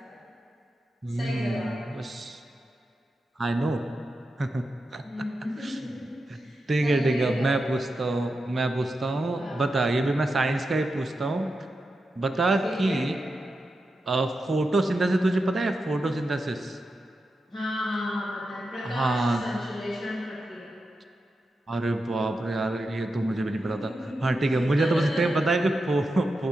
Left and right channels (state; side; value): normal; both; correlation 0.89